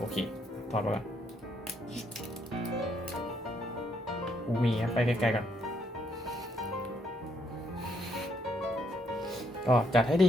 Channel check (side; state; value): both; normal; correlation 0.73